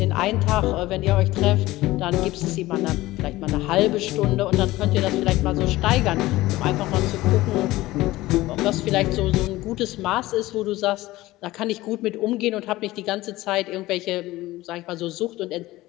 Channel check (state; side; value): quieter; right; 17.9 dB